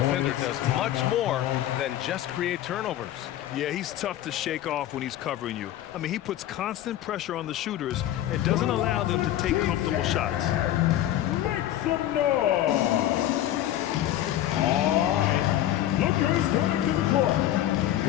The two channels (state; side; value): quieter; right; 12.9 dB